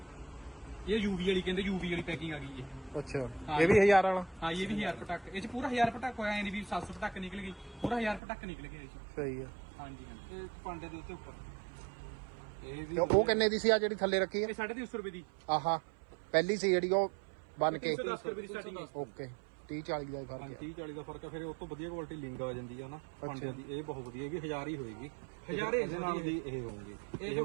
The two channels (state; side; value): drops out; left; at 8.2 s